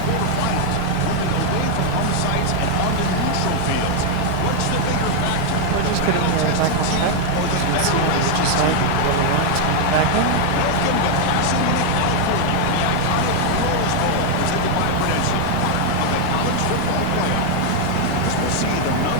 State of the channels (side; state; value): both; different; correlation 0.00